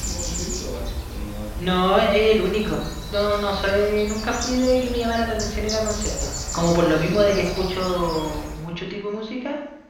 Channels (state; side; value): identical; both; correlation 1.00